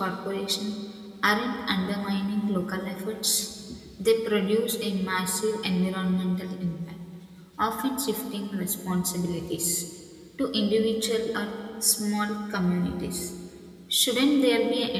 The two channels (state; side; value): identical; both; correlation 1.00